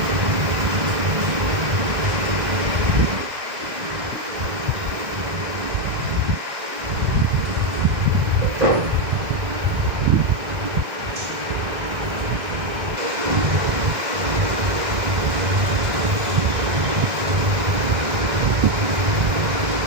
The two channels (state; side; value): late; left; 1.6 ms